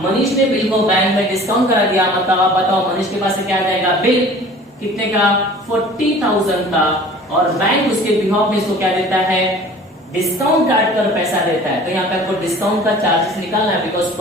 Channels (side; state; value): both; normal; correlation 0.45